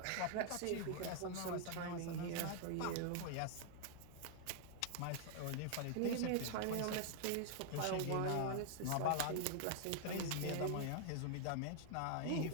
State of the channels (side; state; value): both; different; correlation 0.00